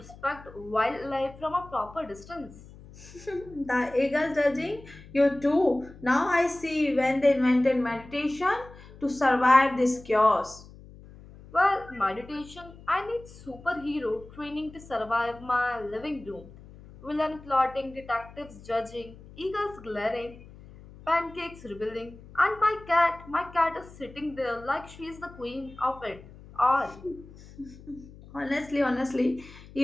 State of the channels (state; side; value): noise; left; hum, 19 dB below the sound